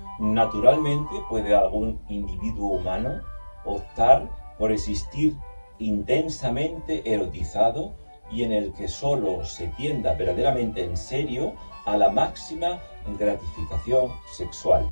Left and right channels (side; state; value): both; inverted; correlation -1.00